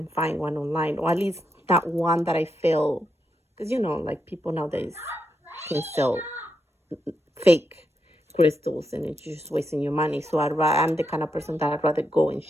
find one online, or at least not one that I feel, because you know, like people nowadays can sell fake crystals and it's just wasting your money. So I'm the kind of person that I'd rather go and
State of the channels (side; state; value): both; normal; correlation 0.83